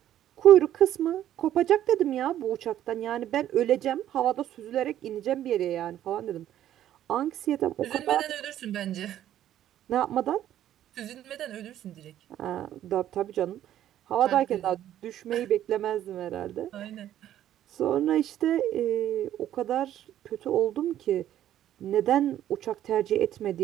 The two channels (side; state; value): left; quieter; 11.8 dB